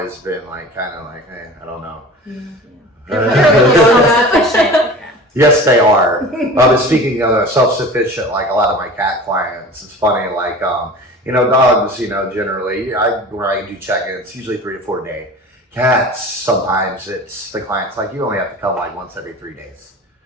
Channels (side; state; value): both; normal; correlation 0.38